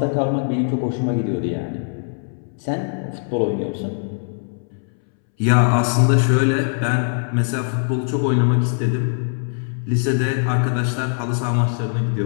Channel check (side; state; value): right; silent; 65 dB below the other